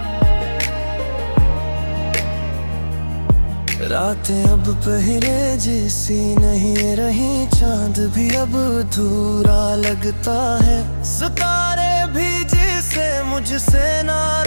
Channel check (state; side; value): inverted; both; correlation -1.00